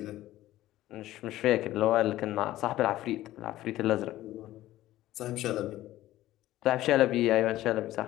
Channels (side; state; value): right; quieter; 15.0 dB